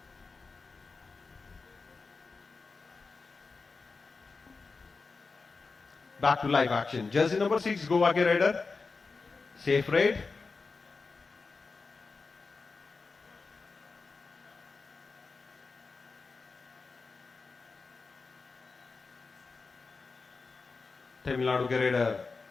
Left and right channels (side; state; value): right; quieter; 4.3 dB